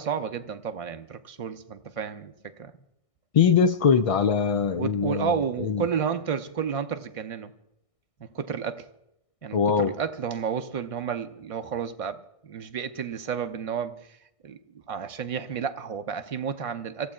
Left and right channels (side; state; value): right; late; 1.6 ms